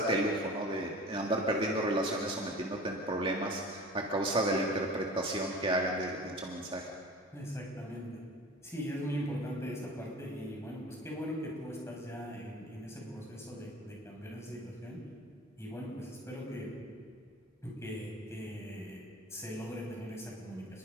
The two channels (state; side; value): normal; both; correlation 0.39